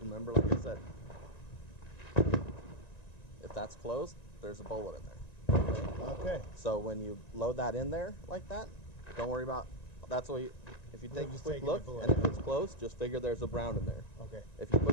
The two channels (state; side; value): late; right; 1.9 ms